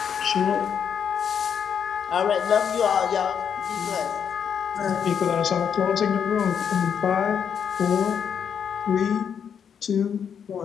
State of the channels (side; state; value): right; quieter; 7.6 dB